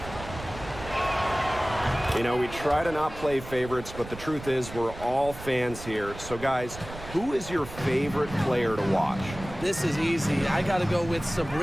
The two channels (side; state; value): right; noise; rumble, 13 dB below the sound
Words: You know, we try to not play favorites, but the truth is we're all fans here. So, guys, who is your favorite player to watch? This is easy. I got to go with